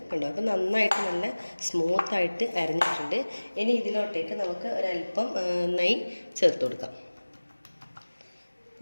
കണ്ടോ. അപ്പോൾ നന്നായിട്ട് നല്ല സ്മൂത്തായിട്ട് അരഞ്ഞിട്ടുണ്ട്. ഇനി ഇതിലോട്ടേക്ക് നമുക്ക് ഒരല്പം നെയ്യ് ചേർത്ത് കൊടുക്കാം.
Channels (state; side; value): inverted; both; correlation -1.00